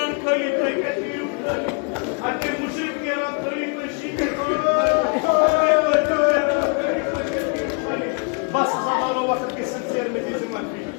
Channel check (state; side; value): quieter; right; 37.3 dB